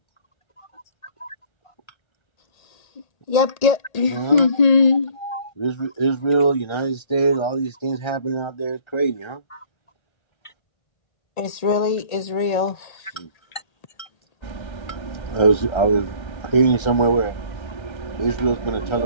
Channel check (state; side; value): late; right; 1.8 ms